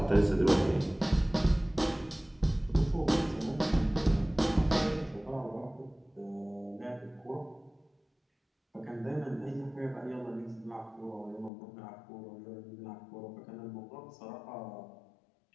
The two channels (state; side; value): drops out; right; at 11.5 s